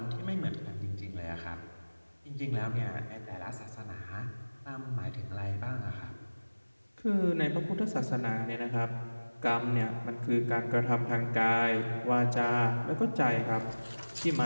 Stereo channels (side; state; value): both; inverted; correlation -1.00